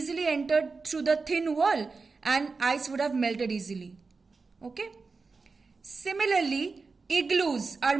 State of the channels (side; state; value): left; quieter; 4.3 dB